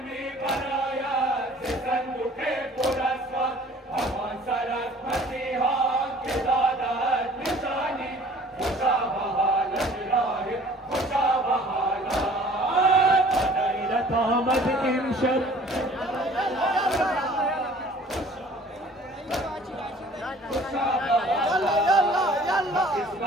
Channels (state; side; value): normal; both; correlation 0.51